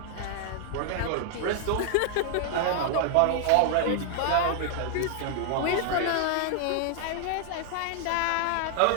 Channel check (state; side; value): different; both; correlation 0.00